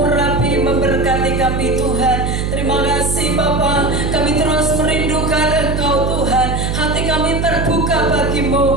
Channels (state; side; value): noise; right; hum, 1 dB below the sound